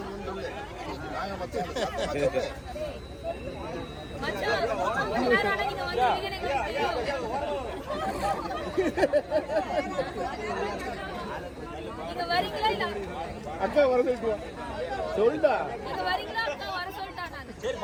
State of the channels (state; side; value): identical; both; correlation 1.00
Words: அக்கா வர சொல்லிட்டா.